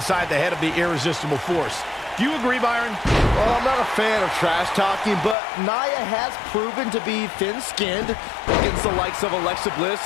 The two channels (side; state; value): right; drops out; at 5.4 s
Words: the head of the irresistible force. Do you agree, Byron? Well, I'm not a fan of trash talking, but Nia has proven to be thin-skinned against the likes of Alexa Bliss